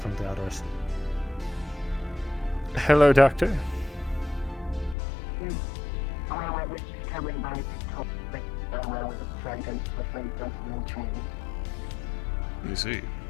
the others. Hello, Doctor. You see.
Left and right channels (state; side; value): drops out; right; at 5.0 s